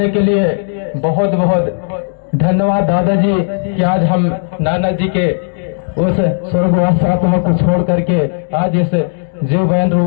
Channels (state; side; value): silent; right; digital silence